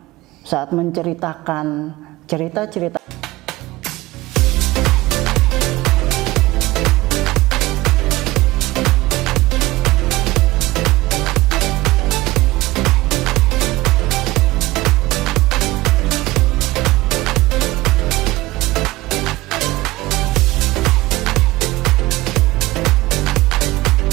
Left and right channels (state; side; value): quieter; left; 19.2 dB